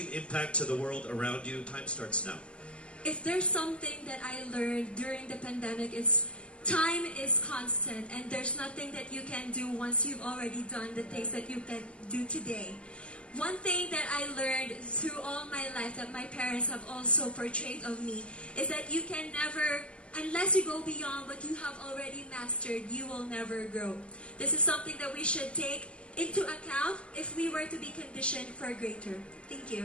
impact to the world around you? Time starts now. If there's something that I learned during the pandemic, it's time is constant, and there's nothing that you can do once you've already done the things that you can do today. One thing that I learned through all my life that my parents have also portrayed of me is that you can never, unless you go beyond what you have already mastered, you will never grow. This is something that we should take into account if we were to be conditioned for greater. Thank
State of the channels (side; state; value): right; late; 0.054 ms